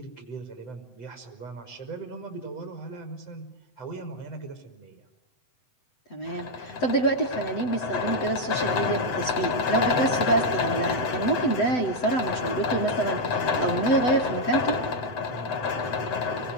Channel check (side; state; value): right; late; 7.9 ms